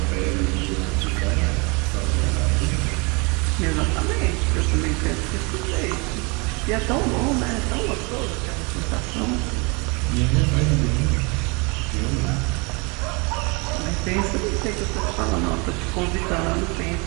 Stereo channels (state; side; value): quieter; left; 29.7 dB